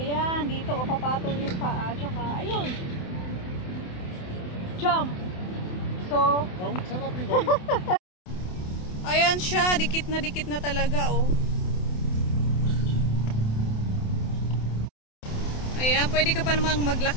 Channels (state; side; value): late; right; 28 ms